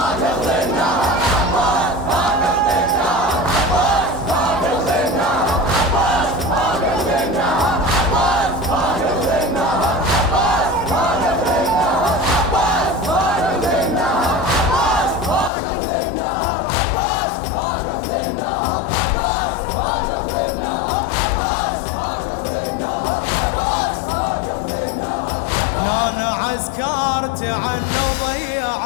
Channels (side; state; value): right; drops out; at 15.5 s